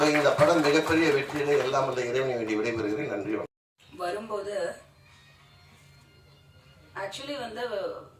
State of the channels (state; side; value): identical; both; correlation 1.00